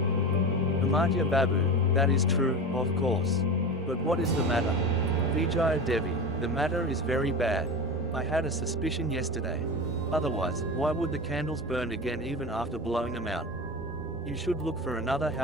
Amartya Babu, "That is true, of course. But what is the matter? Vijaya Devi, the matter is very bad. I had a suspicion yesterday. Otherwise, why would the candles burn again even after blowing them out? You should look for another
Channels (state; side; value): normal; both; correlation 0.26